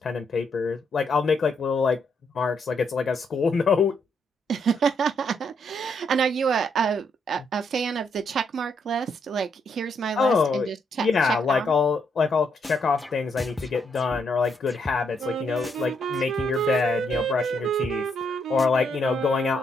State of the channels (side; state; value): both; normal; correlation 0.76